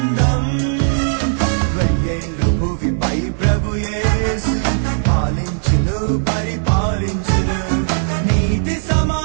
వెయ్యేండ్లు భువిపై ప్రభు యేసు పాలించును పరిపాలించును నీతి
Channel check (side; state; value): left; silent; digital silence